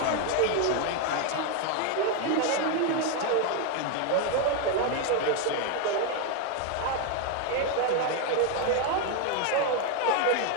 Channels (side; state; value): both; different; correlation 0.01